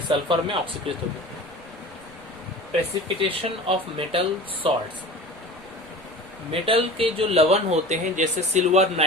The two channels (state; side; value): noise; right; rumble, 27 dB below the sound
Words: सल्फर में ऑक्सीकृत हो गया। Precipitation of metal salts, metal के जो लवण होते हैं जैसे सिल्वर